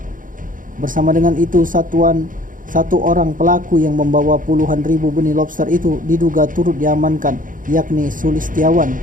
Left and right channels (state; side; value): late; left; 0.39 ms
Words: Bersama dengan itu, satu orang pelaku yang membawa puluhan ribu benih lobster itu diduga turut diamankan, yakni Sulistiawan,